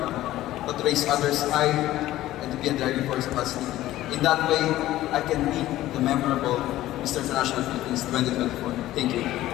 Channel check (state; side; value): quieter; right; 14.9 dB